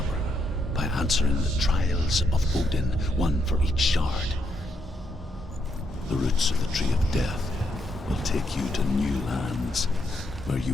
by answering the trials of Odin, one for each shard. The roots of the Tree of Death will take you to new lands, where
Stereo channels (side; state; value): both; normal; correlation 0.78